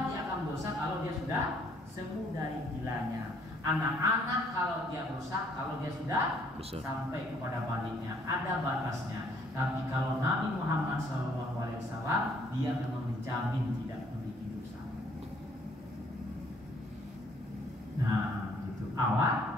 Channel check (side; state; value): both; normal; correlation 0.64